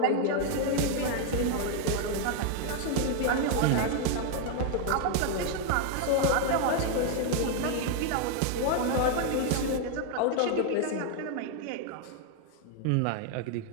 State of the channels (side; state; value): both; different; correlation 0.00